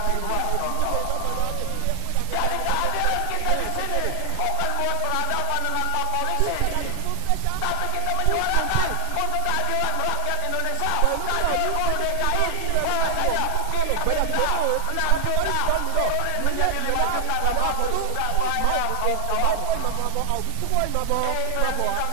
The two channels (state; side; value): different; both; correlation -0.01